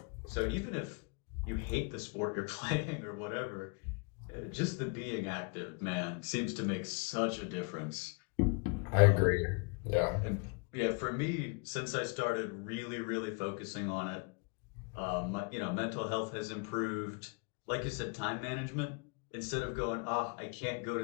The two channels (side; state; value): right; quieter; 33.1 dB